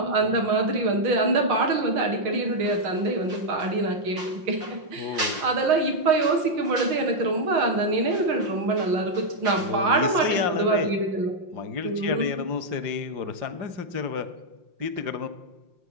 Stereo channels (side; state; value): left; late; 5.7 ms